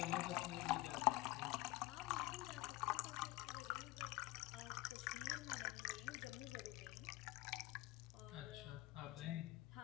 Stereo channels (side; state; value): right; quieter; 19.3 dB